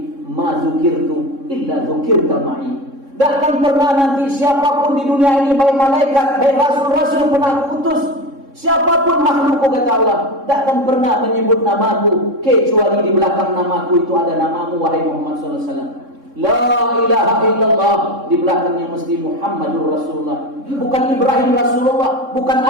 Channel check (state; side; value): late; left; 3.6 ms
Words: ma zukirtu illa zukirta ma'i. Takkan pernah nanti siapapun di dunia ini, baik malaikat, baik rasul-rasul yang pernah aku utus, siapapun makhlukku, kata Allah, takkan pernah menyebut namaku kecuali di belakang namaku itu ada namamu wahai Muhammad SAW. La ilaha illallah, di belakangnya mesti Muhammadur Rasulullah. Bukan Ibrahim Rasulullah, bukan